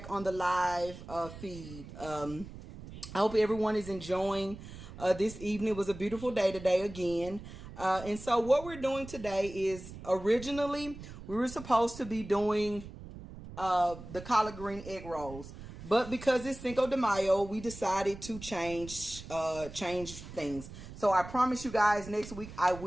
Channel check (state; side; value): noise; right; rumble, 14 dB below the sound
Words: on the live feed. I hope everyone is enjoying this evening. It was a beautiful day today again. And so what we're doing today is originally we were supposed to be doing the collard green egg rolls. But because it's Cinco de Mayo, we decided to change things. So I promise you guys next week I